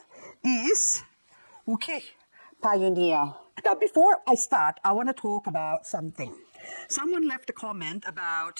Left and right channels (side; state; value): both; inverted; correlation -1.00